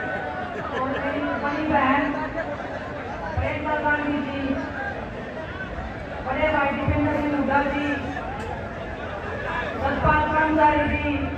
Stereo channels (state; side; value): identical; both; correlation 1.00